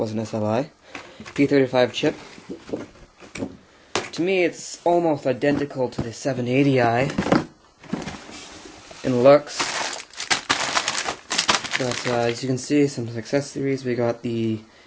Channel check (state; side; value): identical; both; correlation 1.00